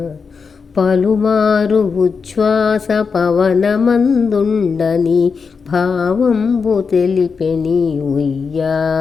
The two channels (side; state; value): right; quieter; 5.3 dB